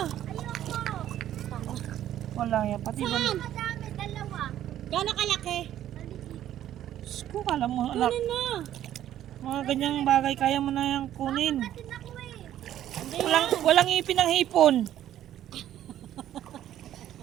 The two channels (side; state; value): left; quieter; 11.8 dB